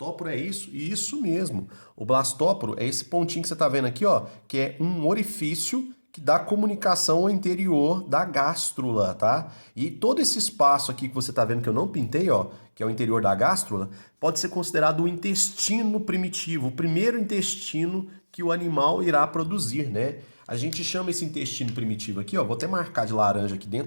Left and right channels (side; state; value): both; inverted; correlation -1.00